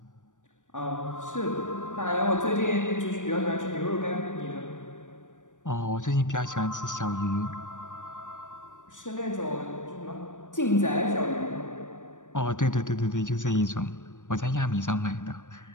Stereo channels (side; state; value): right; late; 0.87 ms